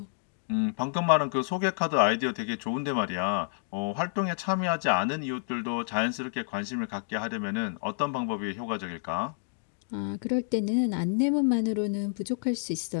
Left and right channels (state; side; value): silent; right; digital silence